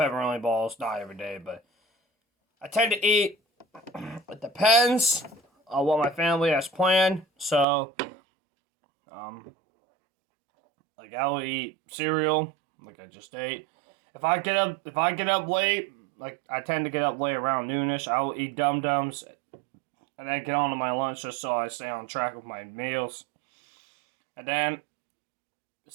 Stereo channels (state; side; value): drops out; left; at 7.7 s